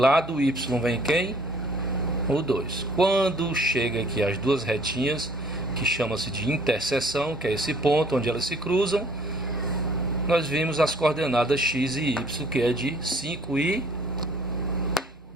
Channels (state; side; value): normal; both; correlation 0.55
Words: do Y vem quem? O 2. Quando chega aqui as duas retinhas, que chama-se de interseção, que é esse ponto onde elas se cruzam, nós vimos as coordenadas X e Y, que é de 5 e